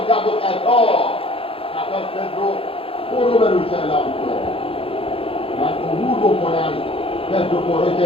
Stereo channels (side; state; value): right; late; 0.27 ms